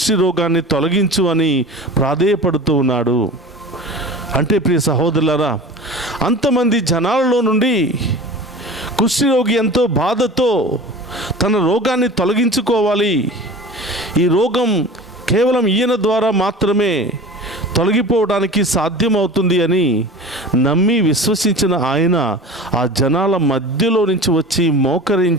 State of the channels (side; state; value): both; normal; correlation 0.37